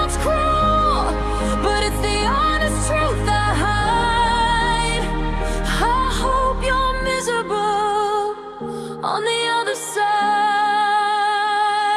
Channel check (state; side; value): identical; both; correlation 1.00